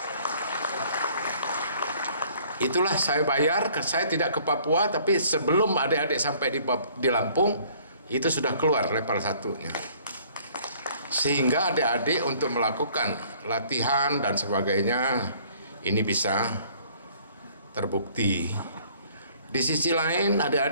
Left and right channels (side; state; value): both; inverted; correlation -0.57